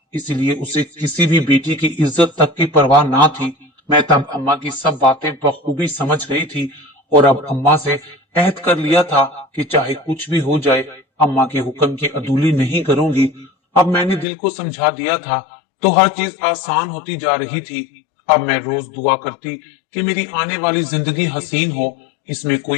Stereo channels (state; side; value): drops out; right; at 14.2 s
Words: इसलिए उसे किसी भी बेटी की इज्जत तक की परवाह ना थी। मैं तब अम्मा की सब बातें बखूबी समझ गई थी और अब अम्मा से अहद कर लिया था कि चाहे कुछ भी हो जाए, अम्मा के हुक्म की अदूली नहीं करूंगी। अब मैंने दिल को समझा दिया था तो हर चीज आसान होती जा रही थी। अब मैं रोज दुआ करती कि मेरी आने वाली जिंदगी हसीन हो, इसमें